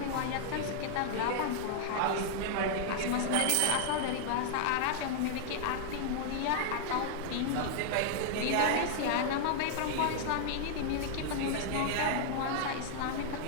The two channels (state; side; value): different; both; correlation 0.00